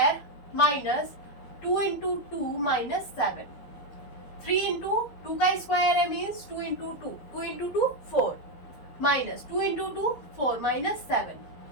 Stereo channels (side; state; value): right; late; 12 ms